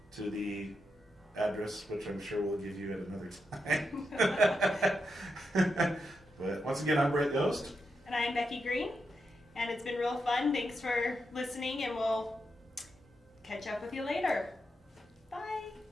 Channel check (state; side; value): normal; both; correlation 0.85